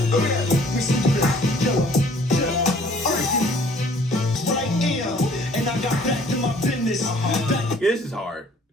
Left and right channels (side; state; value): both; normal; correlation 0.56